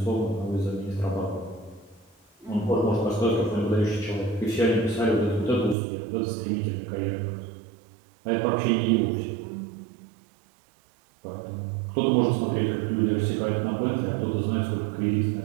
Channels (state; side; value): drops out; left; at 5.8 s